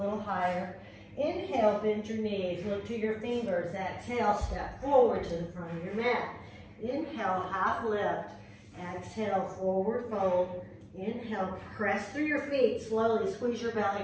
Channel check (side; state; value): both; identical; correlation 1.00